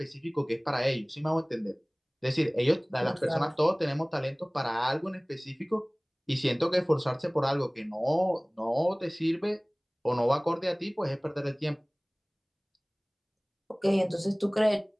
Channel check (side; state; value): both; identical; correlation 1.00